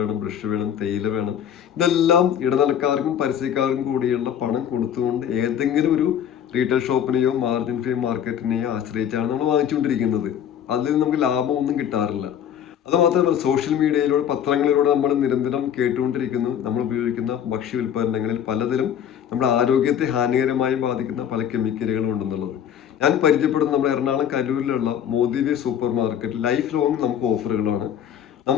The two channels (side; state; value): right; quieter; 9.3 dB